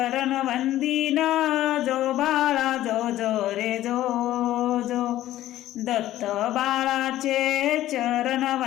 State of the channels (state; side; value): quieter; right; 14.0 dB